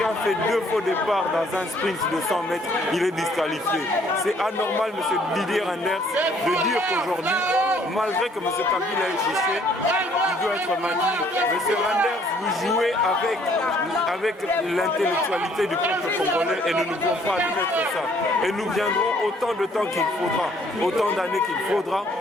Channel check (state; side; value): normal; both; correlation 0.62